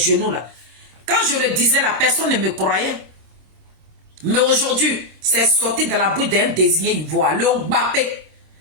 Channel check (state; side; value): late; left; 26 ms